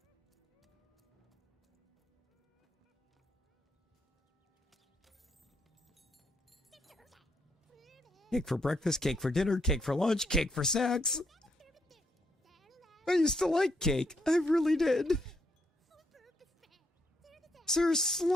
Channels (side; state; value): both; normal; correlation 0.75